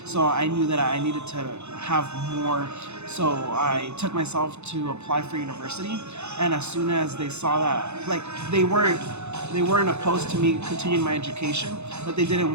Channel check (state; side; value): late; left; 0.81 ms